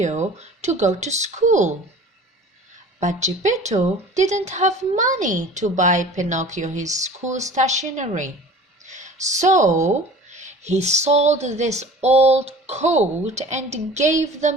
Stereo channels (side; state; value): both; normal; correlation 0.42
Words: to go to school. But Gepetto didn't have money to buy Pinocchio his school stationery. So he sold this old coat and gave the